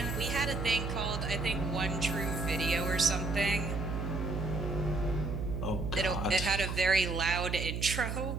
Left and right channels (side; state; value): right; noise; hum, 3 dB below the sound